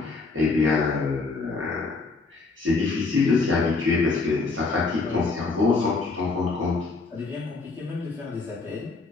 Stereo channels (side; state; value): right; quieter; 4.0 dB